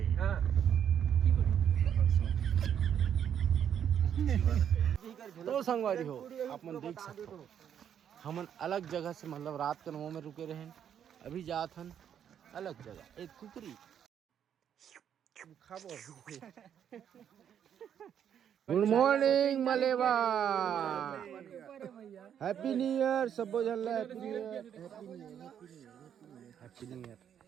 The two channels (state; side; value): quieter; left; 9.0 dB